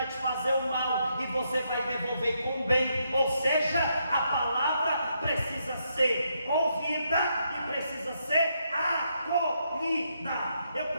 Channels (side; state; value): both; inverted; correlation -0.78